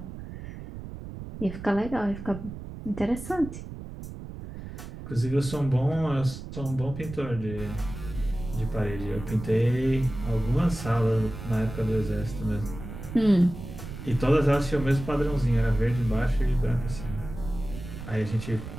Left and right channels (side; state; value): right; noise; rumble, 11 dB below the sound